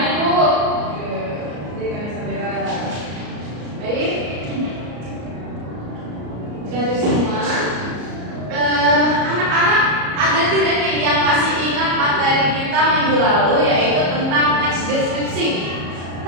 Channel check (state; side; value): late; left; 34 ms